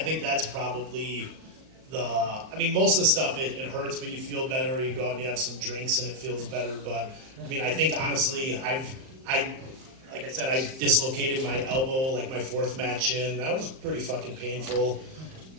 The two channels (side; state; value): left; late; 38 ms